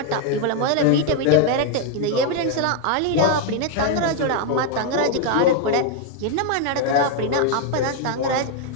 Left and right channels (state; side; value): different; both; correlation 0.00